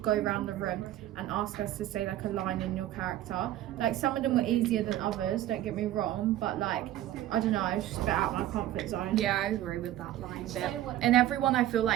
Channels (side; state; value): left; quieter; 13.6 dB